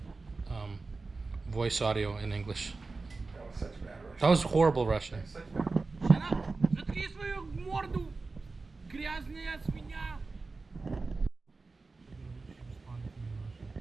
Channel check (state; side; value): quieter; left; 3.8 dB